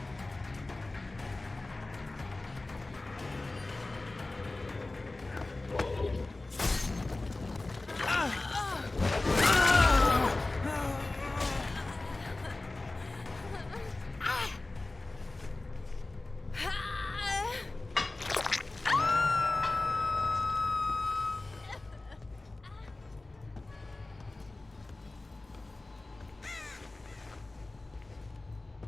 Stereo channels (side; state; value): right; quieter; 3.0 dB